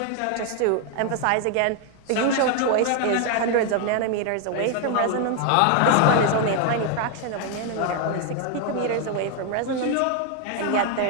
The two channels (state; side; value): different; both; correlation 0.00